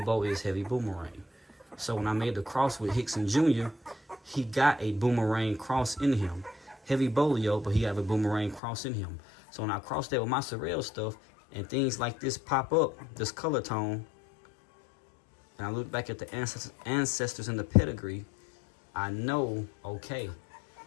Bow is heavy boomerang. So when I made the cross with Hickson Jr., he got a boomerang cross in him. Heavy bolio, but he have a boomerang cross in him. So when I cross that with my Sorrel stuff, and things like this pop up, this color tone, and I look back at the ancestors in the pedigree, I know, okay,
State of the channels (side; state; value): right; drops out; at 8.6 s